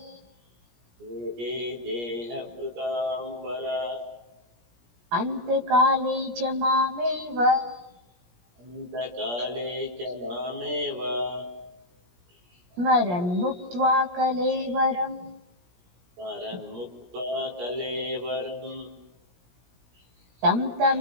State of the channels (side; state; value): left; late; 17 ms